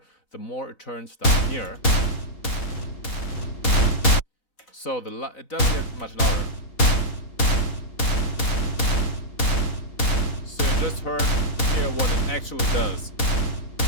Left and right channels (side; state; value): right; late; 4.0 ms